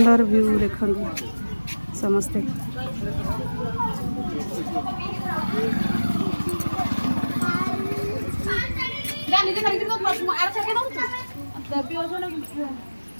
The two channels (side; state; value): both; inverted; correlation -1.00